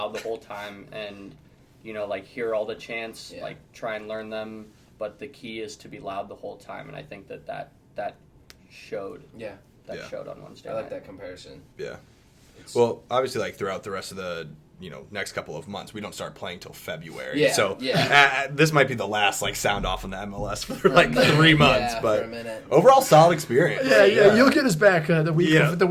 the whole time and hear all the chants, try and learn them, but the key is to be loud the whole time, and I think that showed. Yeah. That showed on Wednesday. I like that comparison. Yeah. Well, obviously, throughout the rest of the next couple of months, we don't start playing till February. Yeah, so this might be the last sound off in the MLS for 3 months. But for a minute. Overall, solid experience. Yeah. You'll get us back the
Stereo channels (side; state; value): both; identical; correlation 1.00